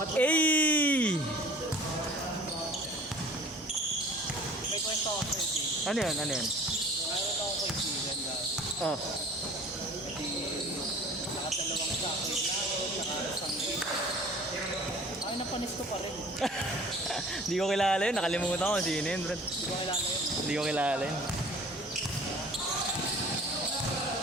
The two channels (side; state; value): both; normal; correlation 0.47